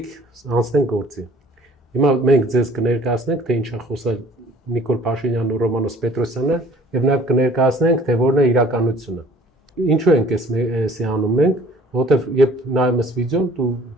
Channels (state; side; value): normal; both; correlation 0.53